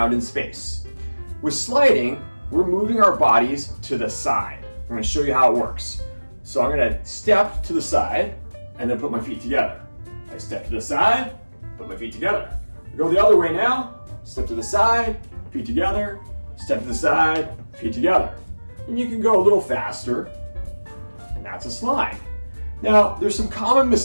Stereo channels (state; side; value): inverted; both; correlation -1.00